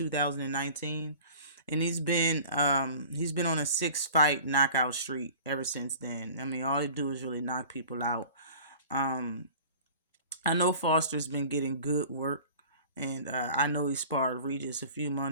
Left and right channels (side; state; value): both; inverted; correlation -0.43